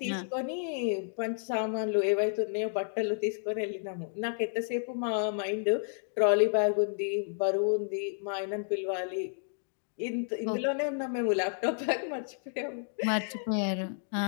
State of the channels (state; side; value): silent; right; digital silence